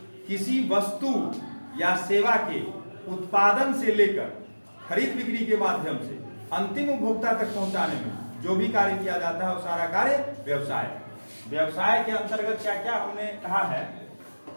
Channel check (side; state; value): both; inverted; correlation -1.00